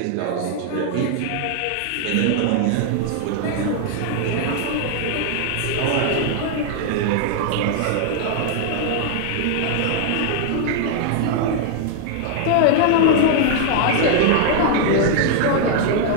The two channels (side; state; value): both; different; correlation 0.00